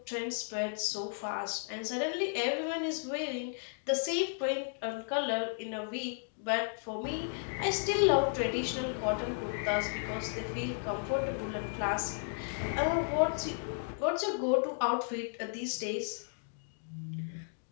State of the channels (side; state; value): right; silent; digital silence